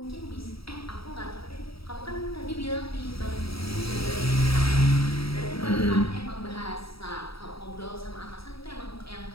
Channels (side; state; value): right; late; 0.76 ms